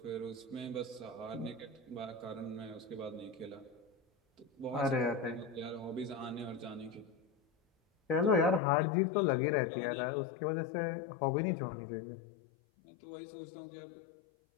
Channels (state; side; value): drops out; right; at 8.6 s